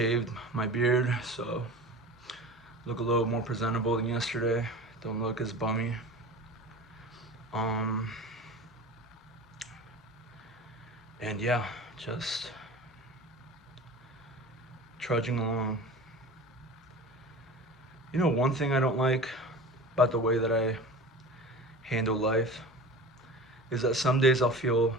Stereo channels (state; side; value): normal; both; correlation 0.36